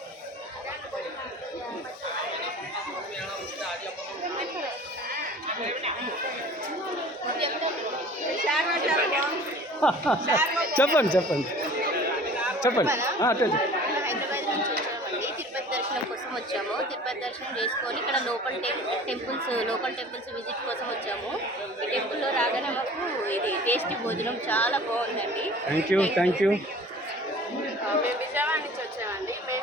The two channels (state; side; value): normal; both; correlation 0.45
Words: చెప్పండి చెప్పండి చెప్పండి. హైదరాబాద్ నుంచి వచ్చామండి. తిరుపతి దర్శనం కోసం వచ్చాము. తిరుపతి దర్శనం చేసుకొని ఇక్కడ లోకల్ టెంపుల్స్ విజిట్ కోసం వచ్చాము. ఈ టెంపుల్లో రాగానే మాకు ఇది టేస్టీ భోజనం చాలా బాగుందండి. Thank you. మేము విజయవాడ నుంచి వచ్చామండి. మేము